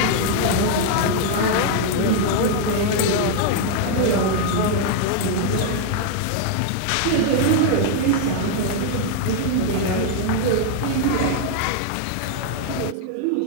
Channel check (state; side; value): different; both; correlation 0.00